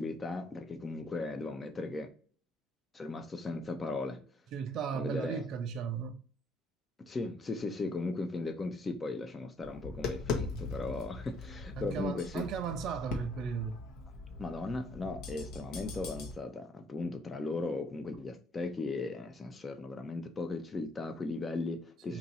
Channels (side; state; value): both; normal; correlation 0.65